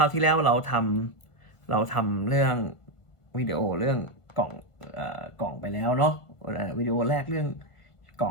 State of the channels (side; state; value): right; late; 1.5 ms